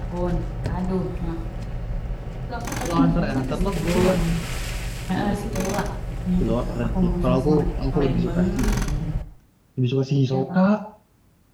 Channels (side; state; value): both; identical; correlation 1.00